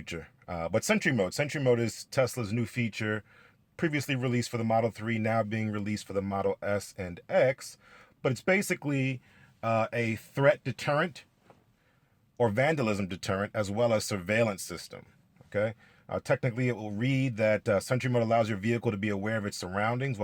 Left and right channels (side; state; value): both; identical; correlation 1.00